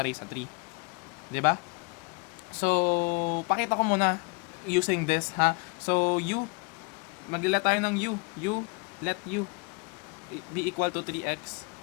sa 3. Diba? So, pakita ko muna using this, ha? So, u, maglila tayo ng u. Let u be equal to 3x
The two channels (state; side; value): quieter; right; 31.0 dB